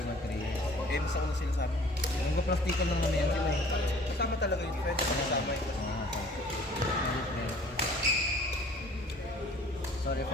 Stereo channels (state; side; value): normal; both; correlation 0.51